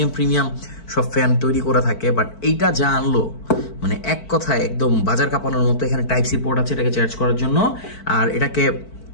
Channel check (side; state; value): right; late; 4.5 ms